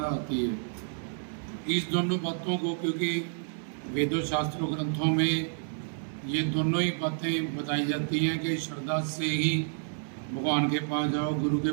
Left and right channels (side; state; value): left; silent; digital silence